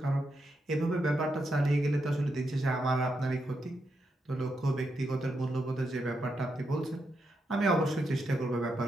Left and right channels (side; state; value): both; normal; correlation 0.83